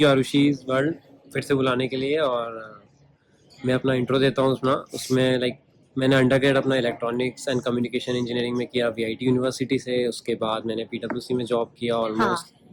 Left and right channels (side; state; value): both; identical; correlation 1.00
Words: यू आरुषि's वर्ल्ड फिर से बुलाने के लिए। और मैं अपना इंट्रो देता हूँ उसमें मैंने अंडरग्रेड अपना इलेक्ट्रॉनिक्स एंड कम्युनिकेशन इंजीनियरिंग में किया वीआईटी यूनिवर्सिटी से। उसके बाद मैंने पीडब्ल्यूसी में जॉब किया, ऑलमोस्ट